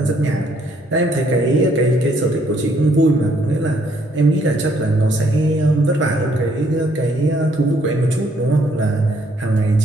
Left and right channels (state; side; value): normal; both; correlation 0.67